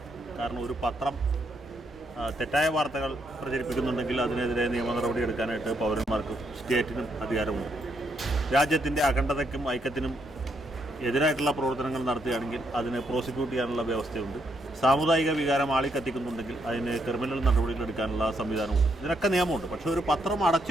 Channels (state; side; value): normal; both; correlation 0.76